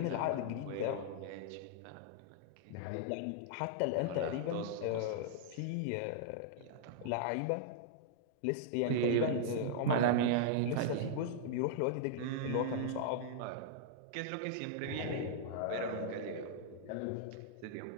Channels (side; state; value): both; different; correlation -0.01